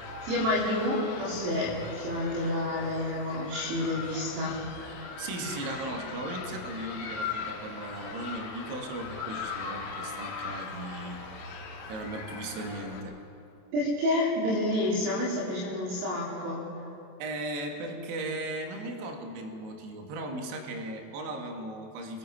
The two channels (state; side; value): late; left; 28 ms